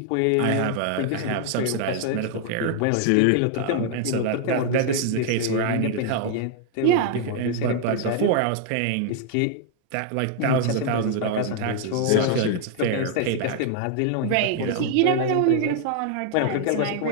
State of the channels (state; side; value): different; both; correlation 0.00